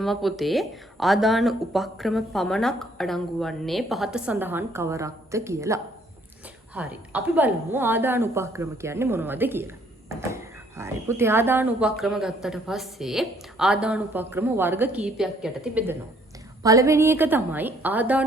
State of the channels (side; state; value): both; normal; correlation 0.64